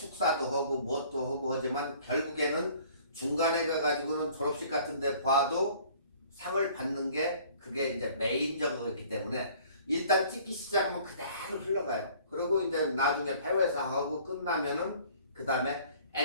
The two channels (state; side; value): inverted; both; correlation -0.53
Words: 하고 뭣도 하고 하지만 결국에는 중간에 가가지고는 졸업식 같은 데 봐도 상을 받는 게 그게 이제 메인적이기 때문에 일단 찍기 시작하면 그대로 흘러가요. 그리고 이제 나중에 폐회사하고 끝나면은 그 다음에